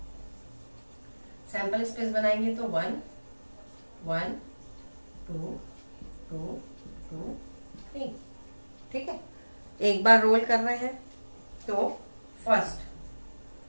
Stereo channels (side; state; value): both; inverted; correlation -1.00